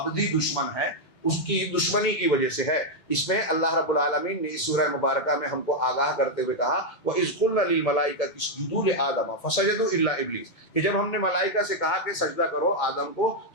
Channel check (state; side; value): late; right; 2.2 ms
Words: دشمن ہے اس کی دشمنی کی وجہ سے ہے۔ اس میں اللہ رب العالمین نے اس سورہ مبارکہ میں ہم کو آگاہ کرتے ہوئے کہا وَإِذْ قُلْنَا لِلْمَلَائِكَةِ اسْجُدُوا لِآدَمَ فَسَجَدُوا إِلَّا إِبْلِيسَ، کہ جب ہم نے ملائکہ سے کہا کہ سجدہ کرو آدم کو